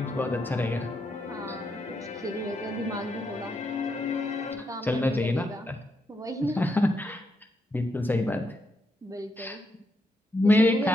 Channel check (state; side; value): normal; both; correlation 0.80